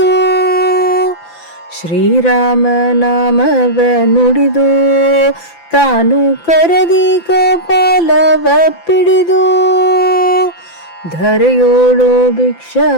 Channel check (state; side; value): late; right; 5.9 ms